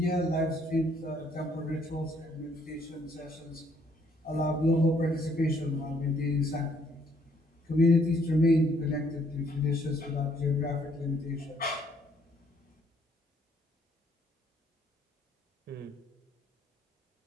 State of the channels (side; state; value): both; normal; correlation 0.66